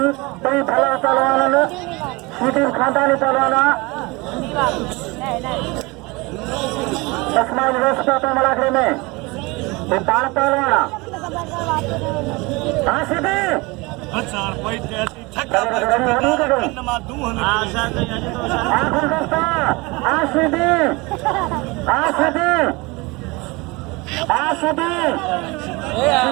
कई भला पहलवान सीधी खानदानी पहलवाना तस्माई व्यवस्था पे मलाखरे में ये बाण पहलवाना हाँ सीधी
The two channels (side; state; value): left; quieter; 24.9 dB